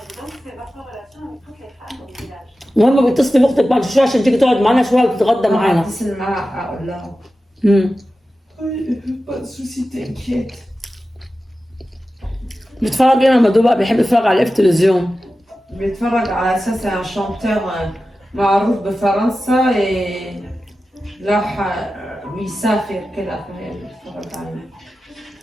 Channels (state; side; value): normal; both; correlation 0.94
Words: المهم بتصلي باختك بعد شويه عشان تيجي تقعد معانا شويه وتتغدى معانا. اتصل معاها اقول لها بيتفرج ايه مامادو بقى؟ بيحب يتفرج على التلفزيون. بيتفرج على اساس شانتور معروف بفرنسا، راح بيسافر كده فهي بيتفرج عليه.